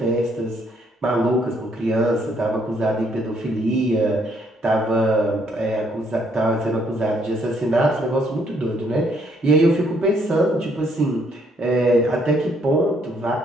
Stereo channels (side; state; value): both; normal; correlation 0.69